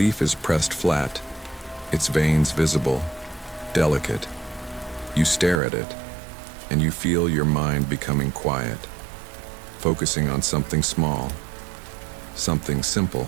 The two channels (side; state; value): left; drops out; at 5.6 s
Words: is pressed flat, its veins visible, delicate. You stare at it, and you feel your mind becoming quiet, focusing on something small, something simple.